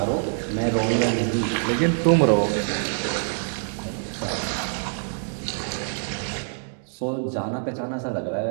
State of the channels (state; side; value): silent; left; digital silence